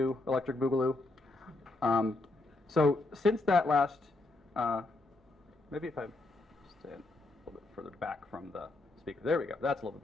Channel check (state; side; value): quieter; right; 3.0 dB